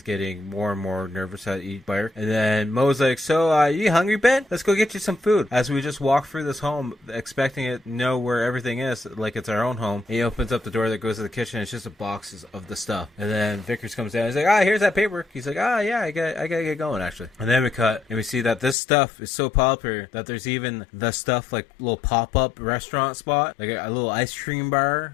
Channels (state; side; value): drops out; right; at 18.8 s